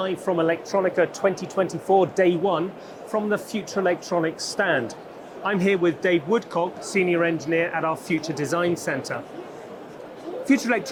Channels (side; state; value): both; identical; correlation 1.00